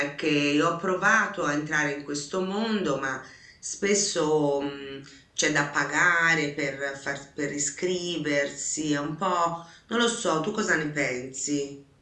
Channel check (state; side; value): identical; both; correlation 1.00